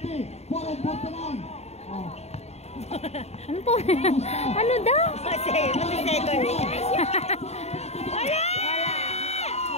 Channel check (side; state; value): right; late; 0.31 ms